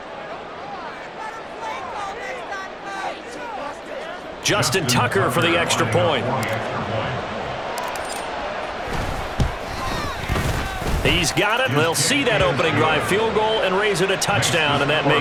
Justin Tucker for the extra point. He's got it. They'll see that opening drive field goal and raise it a touchdown, and that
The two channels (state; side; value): identical; both; correlation 1.00